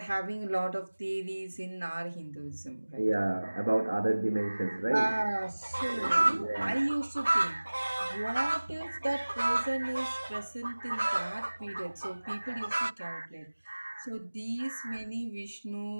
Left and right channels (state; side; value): inverted; both; correlation -1.00